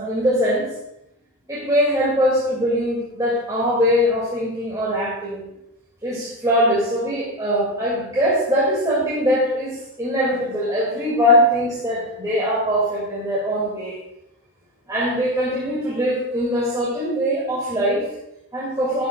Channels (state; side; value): normal; both; correlation 0.20